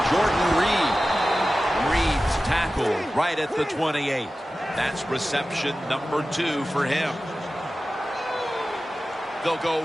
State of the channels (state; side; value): normal; both; correlation 0.95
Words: Jordan Reed. Reed's tackled right at the 28. That's reception number 2 for him. They'll